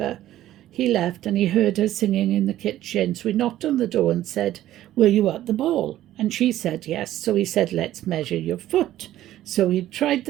he left and he heard her singing in the kitchen. So he knocked on the door and said, were you at the ball? And she said yes. So he said, let's measure your foot. So he tried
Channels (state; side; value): quieter; left; 13.5 dB